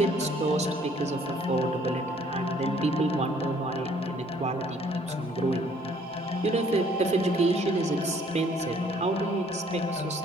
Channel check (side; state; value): both; normal; correlation 0.60